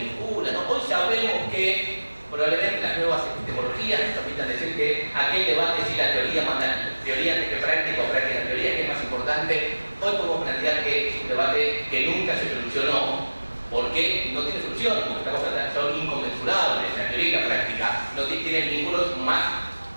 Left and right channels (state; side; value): inverted; both; correlation -1.00